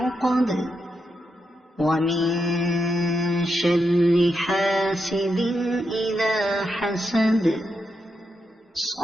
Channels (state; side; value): normal; both; correlation 0.84